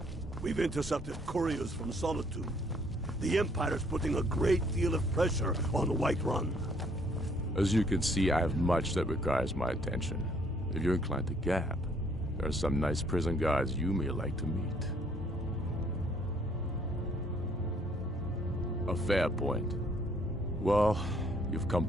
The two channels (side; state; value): both; normal; correlation 0.64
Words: We've intercepted couriers from Solitude. The Empire's putting a great deal of pressure on Whiterun. As you can see, I have much that requires my attention. If you're inclined to gab, there are some nice prison guards you may like to meet. A fair point. Well, you've come